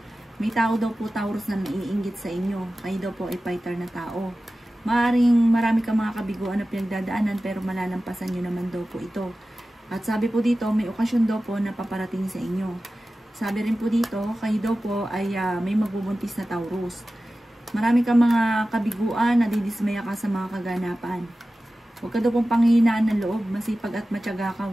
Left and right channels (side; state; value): both; normal; correlation 0.95